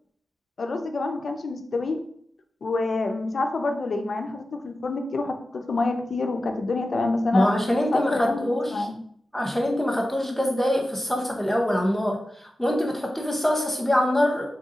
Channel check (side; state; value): both; normal; correlation 0.93